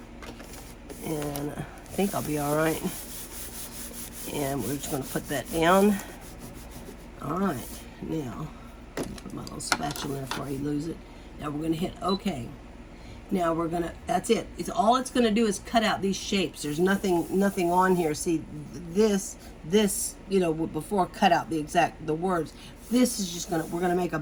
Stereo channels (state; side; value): identical; both; correlation 1.00